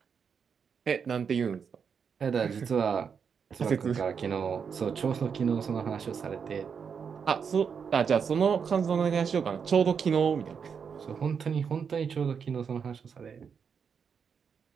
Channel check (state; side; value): quieter; left; 6.5 dB